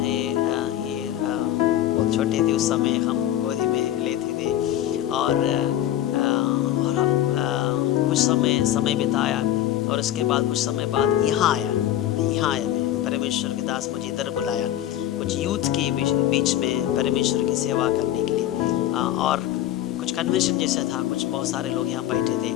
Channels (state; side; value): quieter; right; 12.4 dB